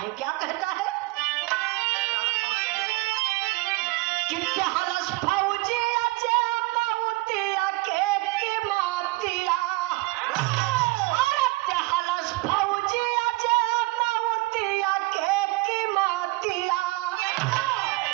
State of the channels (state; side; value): quieter; left; 22.4 dB